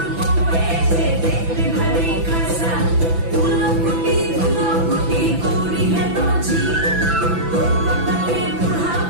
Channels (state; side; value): late; left; 6.0 ms